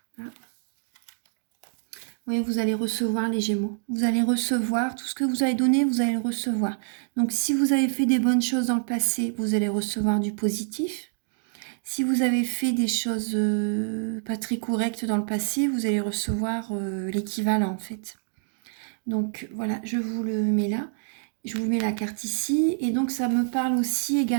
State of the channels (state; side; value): silent; left; digital silence